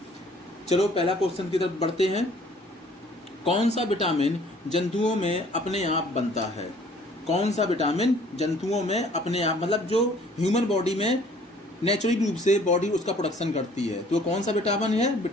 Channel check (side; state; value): both; normal; correlation 0.56